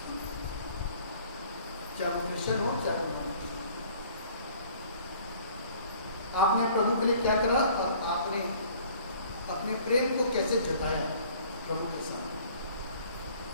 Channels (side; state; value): both; inverted; correlation -0.53